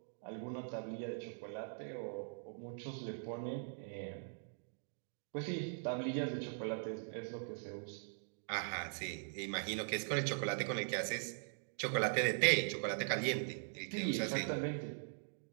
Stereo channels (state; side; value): silent; left; digital silence